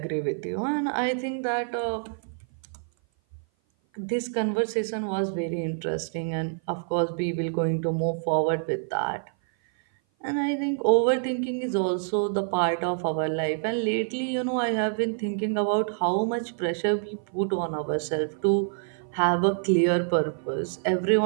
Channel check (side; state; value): left; silent; 56 dB below the other